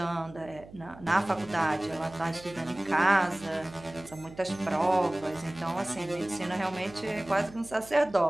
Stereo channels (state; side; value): noise; right; hum, 19 dB below the sound